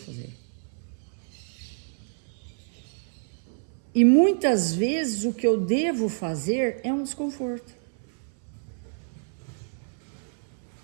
E muitas vezes o que eu devo fazer é um desconforto.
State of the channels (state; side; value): silent; left; 59 dB below the other